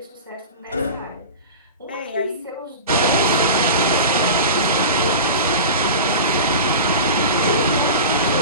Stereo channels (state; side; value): inverted; both; correlation -0.31